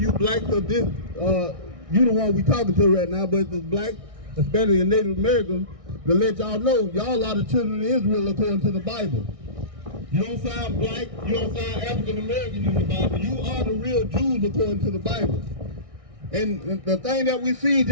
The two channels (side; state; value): left; late; 1.6 ms